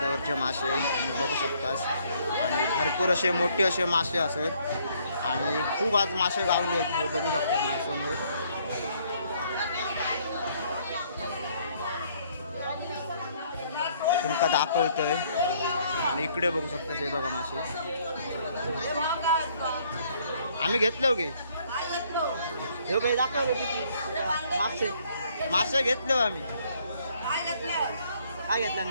मासे बघू शकतास। आणि भरपूर असे मोठे असे मासे असत, आणि खूप आज मासे गावले आहेत हे बघू शकतात माझ्यासमोर। तुमका दाखवतोय, आणि इकडे बघू शकता हे बघा मासे आम्ही घेतलो गे। हे काही दाखवलं किती मासे घेतलो आम्ही। काय घेतलं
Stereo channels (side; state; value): both; inverted; correlation -0.65